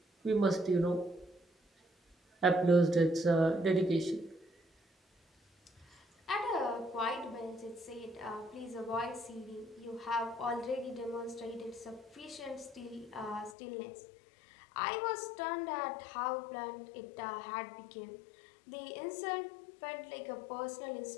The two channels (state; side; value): drops out; right; at 13.6 s